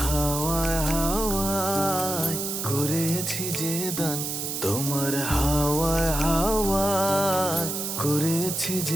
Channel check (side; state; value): right; noise; hiss, 3 dB below the sound